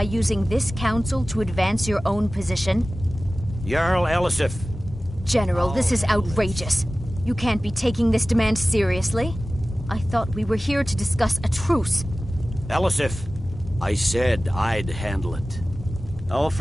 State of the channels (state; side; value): normal; both; correlation 0.96